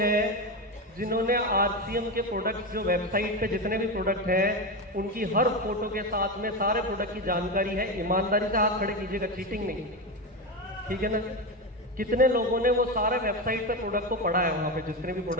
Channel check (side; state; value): both; normal; correlation 0.16